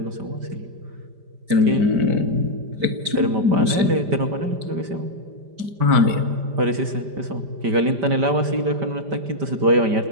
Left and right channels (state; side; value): late; left; 5.0 ms